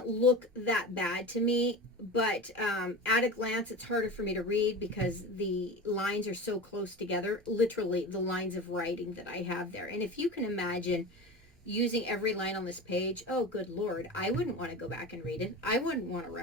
look that bad to me, but at a glance, it's harder for me to read because the lines are so close together, literally the lines of writing that I have there. And if you can imagine using every line on this page, oh, good Lord, I wouldn't want to go back and read it. I wouldn't want to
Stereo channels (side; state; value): both; normal; correlation 0.30